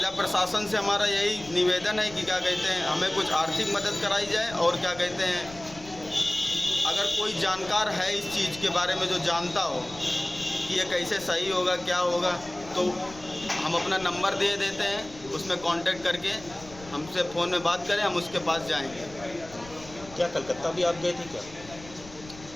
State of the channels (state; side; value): noise; left; rumble, 19 dB below the sound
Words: प्रशासन से हमारा यही निवेदन है कि क्या कहते हैं, हमें कुछ आर्थिक मदद कराई जाए और क्या कहते हैं, अगर कोई जानकार है इस चीज़ के बारे में जो जानता हो कि ये कैसे सही होगा, क्या होगा, तो हम अपना नंबर दे देते हैं, उसमें कांटेक्ट करके हमसे फ़ोन में बात करें, हम उसके पास जाएंगे। क्या कलकत्ता भी आप गए थे क्या?